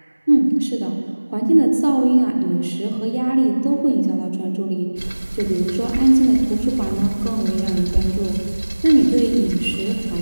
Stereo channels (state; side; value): inverted; both; correlation -1.00